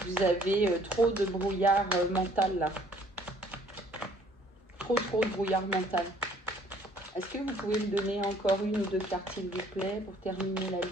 Vous avez trop de brouillard mental là. Trop de brouillard mental. Est-ce que vous pouvez me donner encore une ou deux cartes, s'il vous plaît, pour terminer la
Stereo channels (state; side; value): normal; both; correlation 0.59